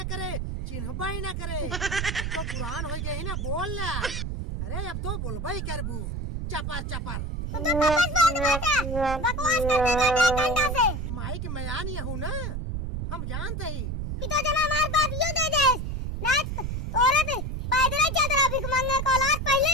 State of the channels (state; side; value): noise; right; rumble, 3 dB below the sound